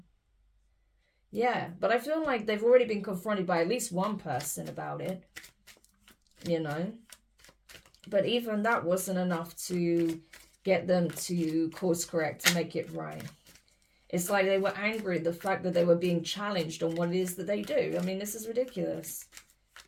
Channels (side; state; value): both; identical; correlation 1.00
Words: Yeah, but I feel like they've already been confronted by at least one person about it, you know. But even that wasn't enough to get them to course correct, to make it right. It's like they were angry at the fact that they were being challenged on what it is that they do. I mean, this is ridiculous.